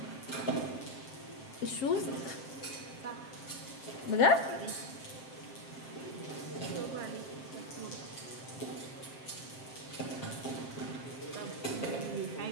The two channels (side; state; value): right; late; 7.5 ms